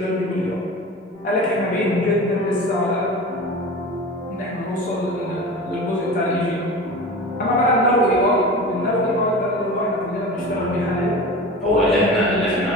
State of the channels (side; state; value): both; normal; correlation 0.33